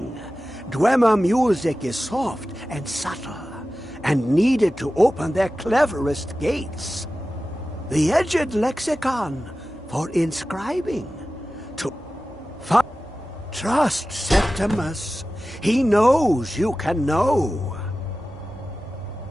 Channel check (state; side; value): normal; both; correlation 0.95